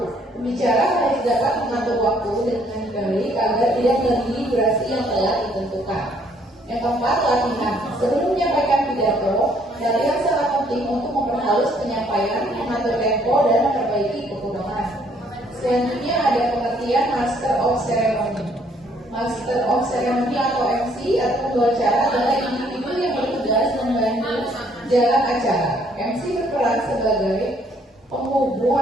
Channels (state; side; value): normal; both; correlation 0.65